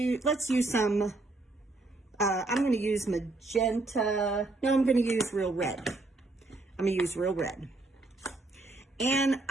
let's use some, I'm going to use magenta, no, I'm going to use real red. I'm going to use real red. And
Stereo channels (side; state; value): left; quieter; 3.1 dB